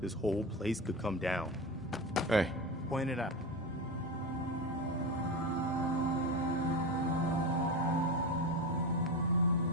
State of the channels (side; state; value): both; normal; correlation 0.21